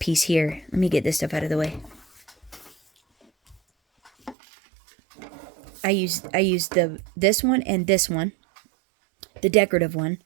here. Let me get this stuff out of the way. I use this one and this one, the decorative one,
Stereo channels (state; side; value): drops out; left; at 4.4 s